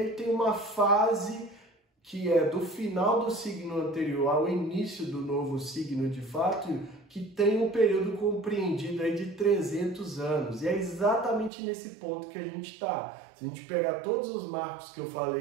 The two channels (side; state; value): left; drops out; at 11.5 s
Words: tem uma fase que é do final do signo anterior ao início do novo signo de fato, que tem um período compreendido aí de 300 anos. E é exatamente nesse ponto que a gente está. Se a gente pegar todos os marcos que eu